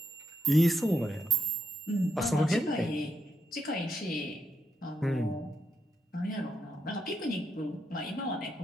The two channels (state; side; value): normal; both; correlation 0.80